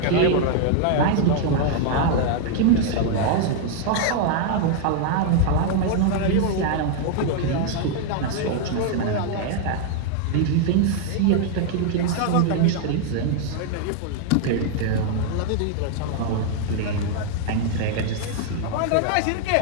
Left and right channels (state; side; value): different; both; correlation 0.00